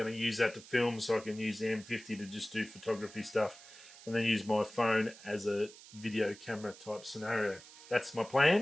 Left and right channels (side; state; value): right; noise; hiss, 19 dB below the sound